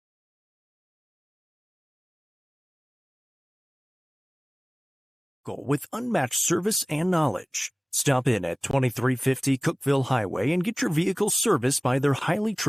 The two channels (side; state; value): both; normal; correlation 0.96